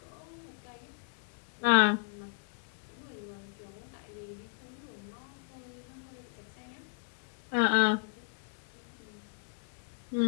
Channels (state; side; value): silent; right; digital silence